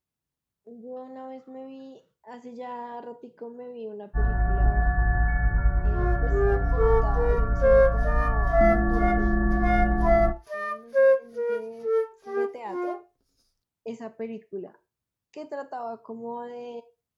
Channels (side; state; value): both; identical; correlation 1.00